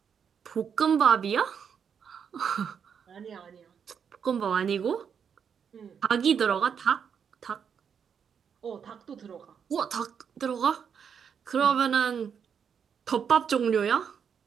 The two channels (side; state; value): left; quieter; 7.2 dB